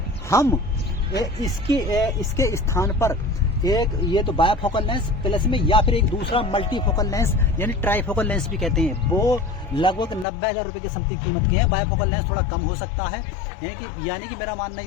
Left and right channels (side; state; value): right; drops out; at 10.2 s